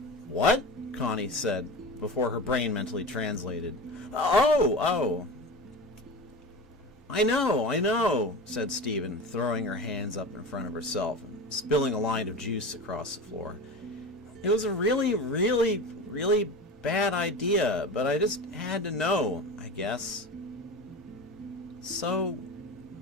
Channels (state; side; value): normal; both; correlation 0.29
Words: What? Connie said, before her brain mentally translated. Oh! I know, said Stephen, throwing her hands up in front of herself and spilling a line of juice across the floor. It was a really, really, really bad idea, but I just had to know, I guess. So,